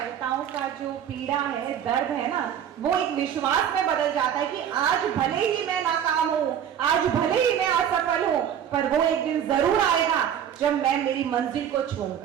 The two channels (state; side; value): quieter; left; 9.3 dB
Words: का जो पीड़ा है, दर्द है ना, वो एक विश्वास में बदल जाता है कि आज भले ही मैं नाकाम हूं, आज भले ही मैं असफल हूं, पर वो एक दिन जरूर आएगा जब मैं मेरी मंजिल को